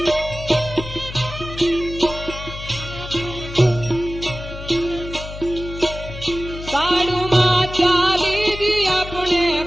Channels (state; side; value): noise; left; hum, 11 dB below the sound